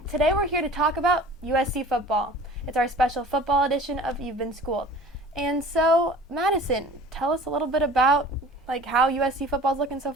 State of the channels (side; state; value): both; normal; correlation 0.44